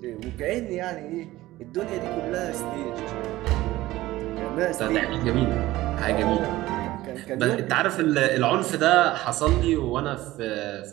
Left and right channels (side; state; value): left; quieter; 17.0 dB